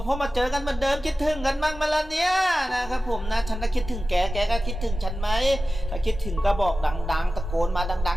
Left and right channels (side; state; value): both; normal; correlation 0.95